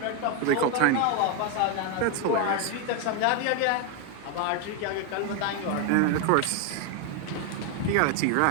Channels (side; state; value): both; different; correlation 0.01